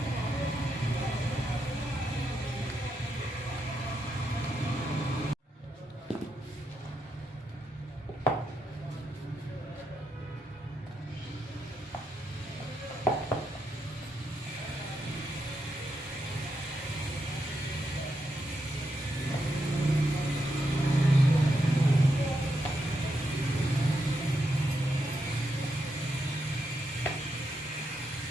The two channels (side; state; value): both; normal; correlation 0.83